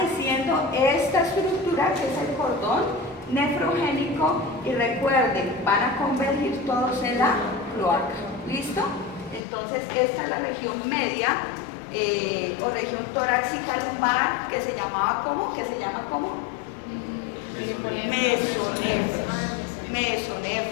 esta estructura que es el cordón nefrogénico, y recuerden, van a convergir todos en la cloaca. ¿Listo? Entonces esta es la región media o región torácica lumbar, que se llamaba ¿cómo? ¿Qué se llama cómo?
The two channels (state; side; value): drops out; right; at 9.4 s